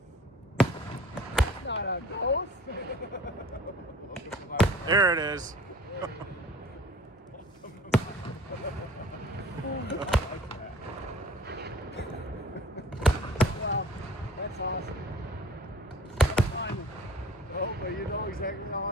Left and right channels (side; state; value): both; normal; correlation 0.49